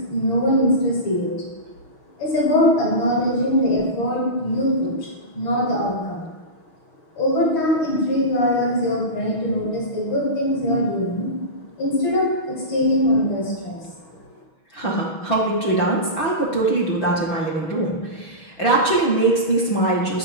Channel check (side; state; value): right; late; 6.3 ms